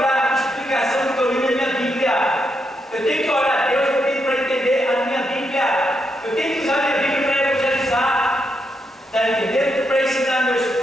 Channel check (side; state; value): both; normal; correlation 0.81